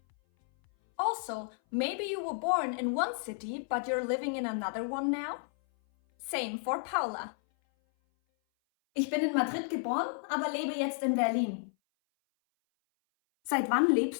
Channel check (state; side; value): silent; right; 57 dB below the other